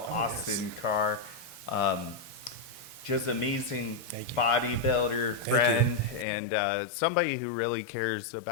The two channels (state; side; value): drops out; right; at 6.2 s